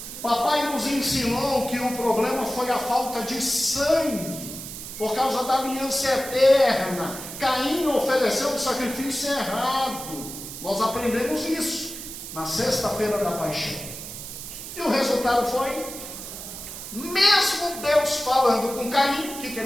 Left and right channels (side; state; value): right; noise; hiss, 10 dB below the sound